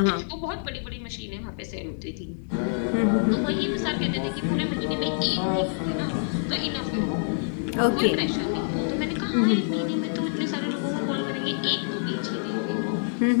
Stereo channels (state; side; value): silent; right; digital silence